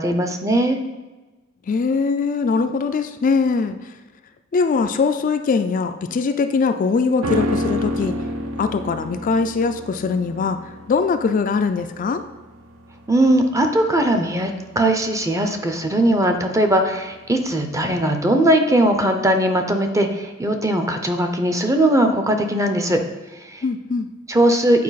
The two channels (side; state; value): both; normal; correlation 0.54